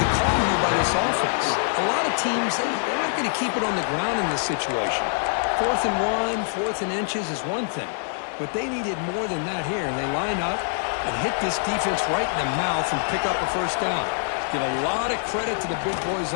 the call here by this offense. A lot of teams, they're not going to keep it on the ground in this situation. 4th and 1, 4th and inches is one thing. But they needed more than that here. And they line up and hit this defense right in the mouth and pick up a 1st down. Give a lot of credit to the big boys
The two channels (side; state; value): right; silent; digital silence